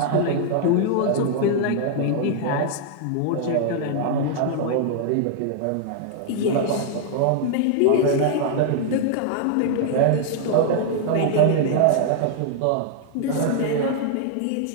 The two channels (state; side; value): different; both; correlation -0.01